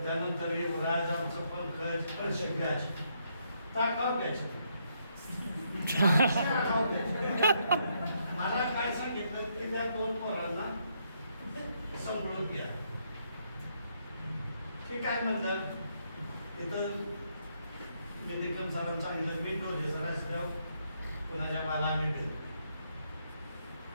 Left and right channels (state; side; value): inverted; both; correlation -0.75